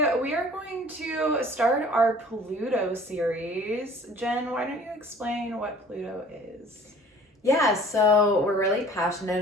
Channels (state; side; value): normal; both; correlation 0.49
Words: we are going to start our Pluto series. Jen, why don't you explain what Pluto is? Yeah, so we're really passionate